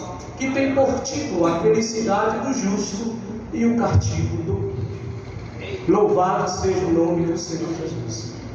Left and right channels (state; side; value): identical; both; correlation 1.00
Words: que tem por título a felicidade do justo e o castigo do ímpio. Louvado seja o nome do Senhor Jesus.